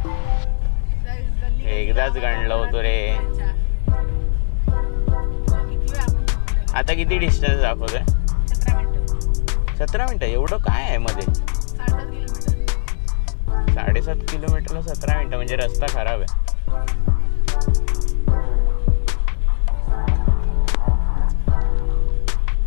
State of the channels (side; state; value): right; silent; 60 dB below the other